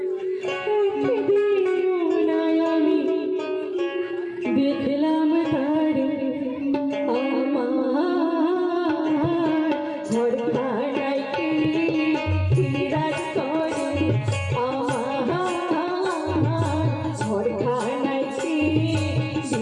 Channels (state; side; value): identical; both; correlation 1.00